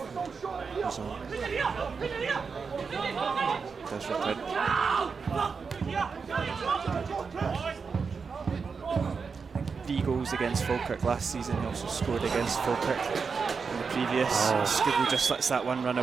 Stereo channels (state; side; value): quieter; left; 5.3 dB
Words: he goes on. Does return. Three goals against Falkirk last season. He also scored against Falkirk in the previous. Skibble just lets that one run